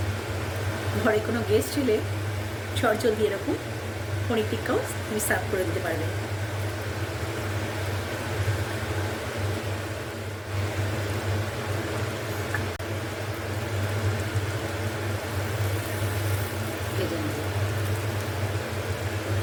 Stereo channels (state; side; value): identical; both; correlation 1.00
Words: ঘরে কোনো গেস্ট এলে চটজলদি এরকম পনির টিক্কাও তুমি সার্ভ করে দিতে পারবে। ভেজে নেব।